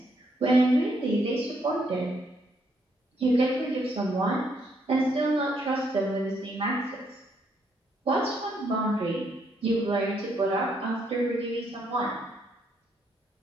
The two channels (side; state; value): both; normal; correlation 0.73